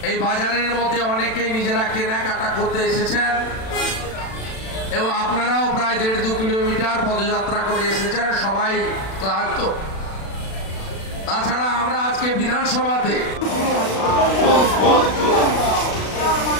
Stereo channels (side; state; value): right; late; 36 ms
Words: এই বাজারের মধ্যে অনেকেই নিজেরা কেনাকাটা করতে এসেছেন এবং আপনারাও প্রায় 1.5-2 কিলোমিটার পদযাত্রা করে এসেছেন, সবাই ক্লান্ত। তাছাড়া আমরা আজকে বিধানসভাতে